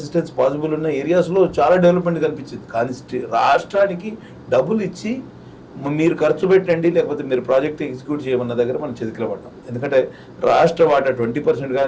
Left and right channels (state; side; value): identical; both; correlation 1.00